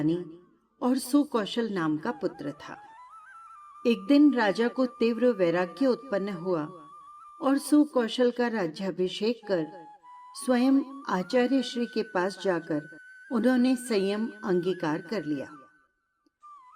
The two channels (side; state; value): both; identical; correlation 1.00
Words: और सुकौशल नाम का पुत्र था। एक दिन राजा को तीव्र वैराग्य उत्पन्न हुआ और सुकौशल का राज्याभिषेक कर स्वयं आचार्य श्री के पास जाकर उन्होंने संयम अंगीकार कर लिया।